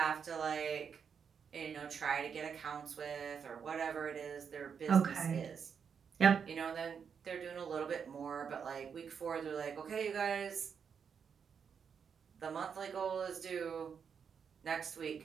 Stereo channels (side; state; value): left; quieter; 6.8 dB